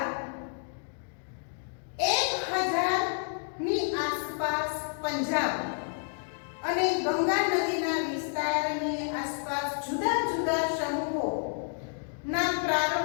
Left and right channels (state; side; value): silent; right; 58 dB below the other